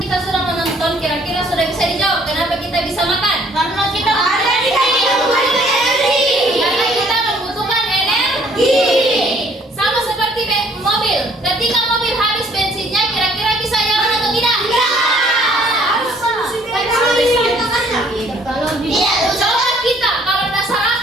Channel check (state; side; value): normal; both; correlation 0.61